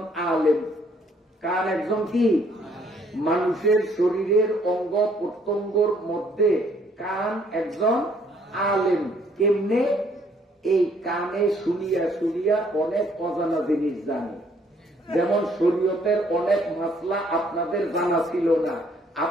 আলেম। কান একজন কি? মানুষের শরীরের অঙ্গ প্রত্যঙ্গর মধ্যে কান একজন আলেম। কেমনে? এই কানে শুনিয়া শুনিয়া অনেক অজানা জিনিস জানে। যেমন শরীয়তের অনেক মাসলা আপনাদের জানা ছিল না,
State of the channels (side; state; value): both; normal; correlation 0.65